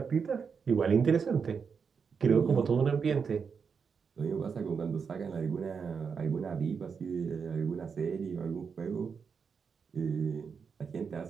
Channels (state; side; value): quieter; left; 6.0 dB